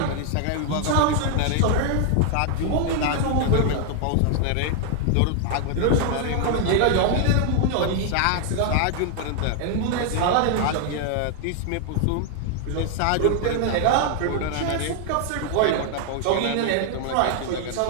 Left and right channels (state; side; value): different; both; correlation 0.00